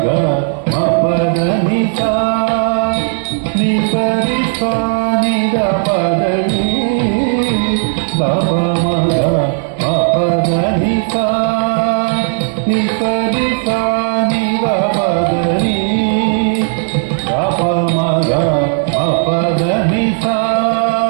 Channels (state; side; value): silent; left; digital silence